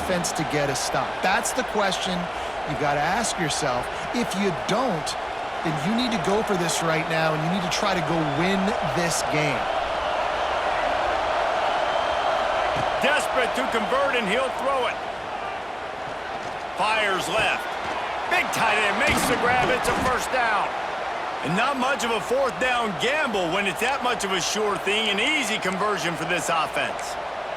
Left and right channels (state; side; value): identical; both; correlation 1.00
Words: to get a stop? That's the question you got to ask yourself. If you don't, then you need to go for this right now, and you need to try to go win this game. Desperate to convert, and he'll throw it. Fires left. Big tight end makes the grab. It's a first down. And not much of a fourth down gamble when it's that much of a sure thing. An easy conversion for this offense.